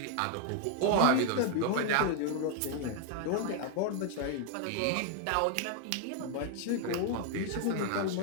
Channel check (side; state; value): both; different; correlation 0.00